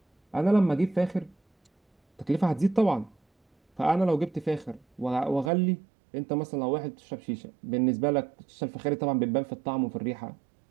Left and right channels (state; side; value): drops out; left; at 5.5 s